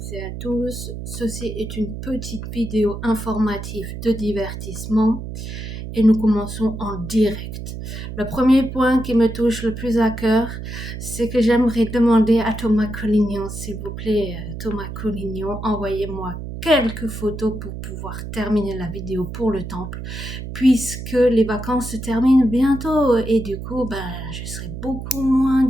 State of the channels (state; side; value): noise; right; hum, 8 dB below the sound